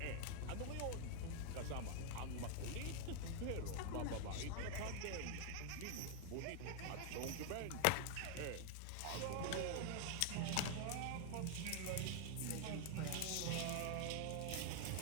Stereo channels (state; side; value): different; both; correlation 0.00